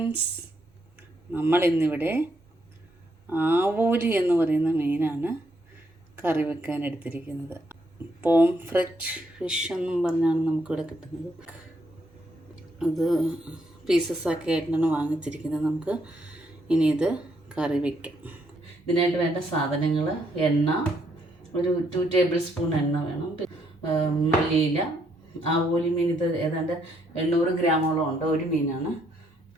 നമ്മളിന്നിവിടെ ആവോലി എന്ന് പറയുന്ന മീനാണ് കറി വെക്കാൻ എടുത്തിരിക്കുന്നത്. പോംഫ്രെറ്റ് ഫിഷ് എന്നും പറഞ്ഞാണ് നമുക്കിവിടെ കിട്ടുന്നത്. അത് പീസസ് ആക്കി ആയിട്ടാണ് വാങ്ങിച്ചിരിക്കുന്നത്. നമുക്ക് ഇനി ഇത് കറി വയ്ക്കാം. ഇതിനായിട്ട് വേണ്ട സാധനങ്ങൾ: എണ്ണ, ഒരു 2 ടേബിൾ സ്പൂൺ എണ്ണ വേണം, മല്ലിയില. ആവോലി മീൻ ഇത് ഏതാണ്ട് 800 ഗ്രാമോളം ഉണ്ട്, ഒരു മീനാണ്.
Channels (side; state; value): both; normal; correlation 0.74